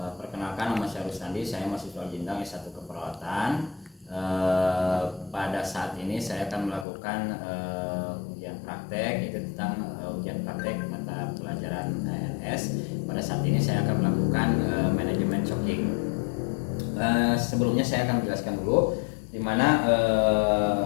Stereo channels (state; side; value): drops out; right; at 6.9 s